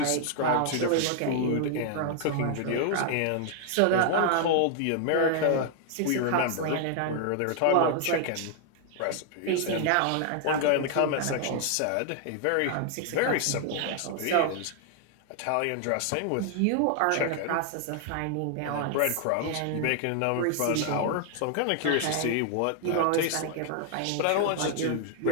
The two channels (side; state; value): both; different; correlation 0.00